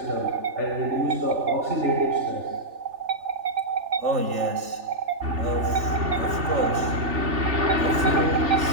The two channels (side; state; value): left; late; 3.4 ms